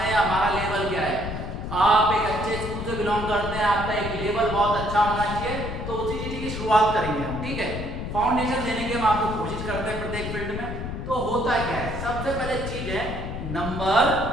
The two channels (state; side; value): noise; left; rumble, 6 dB below the sound